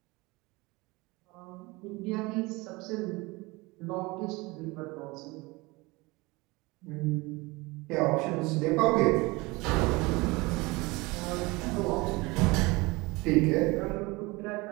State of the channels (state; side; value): quieter; left; 23.7 dB